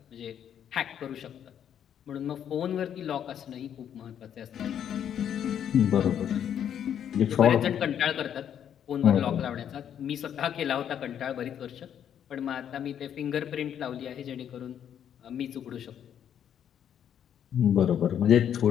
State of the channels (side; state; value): right; quieter; 9.3 dB